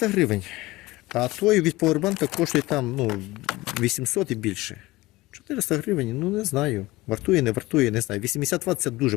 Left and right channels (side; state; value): right; quieter; 19.7 dB